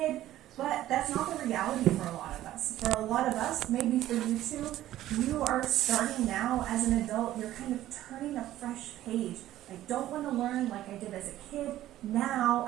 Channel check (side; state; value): left; quieter; 13.8 dB